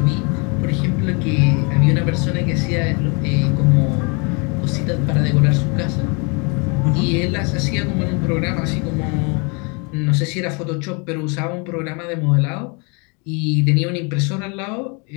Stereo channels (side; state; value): right; quieter; 32.6 dB